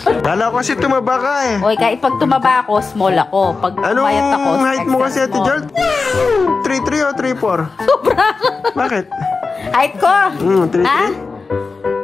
Kala ko kasi tumaba ka eh. Oy, kahit pag tumaba ako, small ako. Pag pumayat ako, Anong height mo kasi extra Ate small. Jol? 3'3 o 3'4? Sobra. Bakit? Height ko? 3'3? Ha?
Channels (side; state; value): right; quieter; 4.3 dB